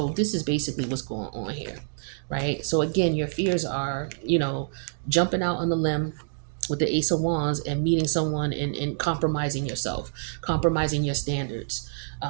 this is basically what's going on here, right? So again, your fears are, jumping out on the limb with the Ace of Wands and meeting someone and compromising yourself, compromising your standards.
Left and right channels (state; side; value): silent; left; digital silence